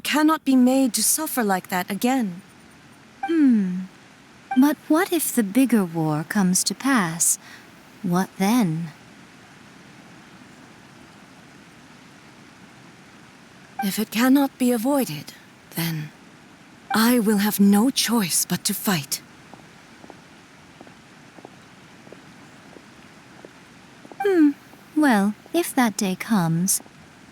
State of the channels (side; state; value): both; identical; correlation 1.00